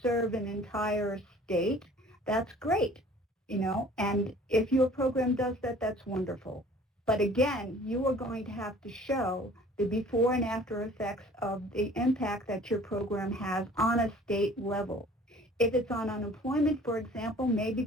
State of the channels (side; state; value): both; normal; correlation 0.50